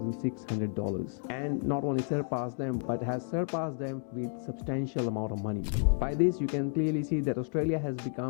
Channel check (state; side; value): silent; right; 57 dB below the other